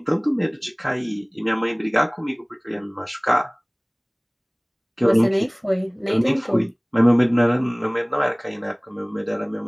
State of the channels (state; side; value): identical; both; correlation 1.00